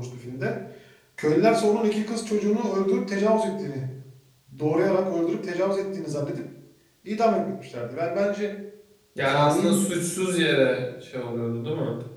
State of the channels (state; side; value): identical; both; correlation 1.00